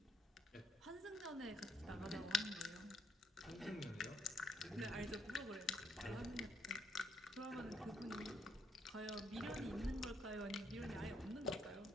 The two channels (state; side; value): normal; both; correlation 0.73